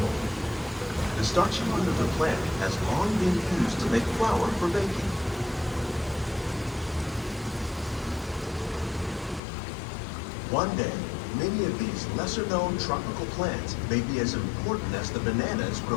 The starchy root of the plant has long been used to make flour for baking. One day, many of these lesser-known tropical plants may be as important as the bananas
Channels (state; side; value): drops out; right; at 9.4 s